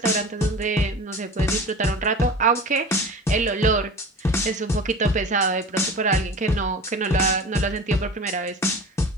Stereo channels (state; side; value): normal; both; correlation 0.36